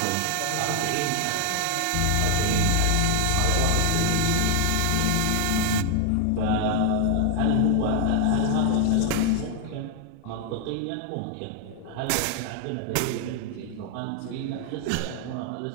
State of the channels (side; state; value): both; different; correlation 0.00